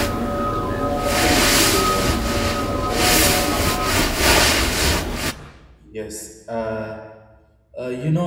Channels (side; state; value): both; identical; correlation 1.00